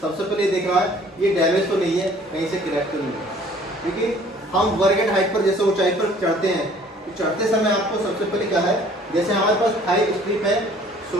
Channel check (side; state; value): both; normal; correlation 0.54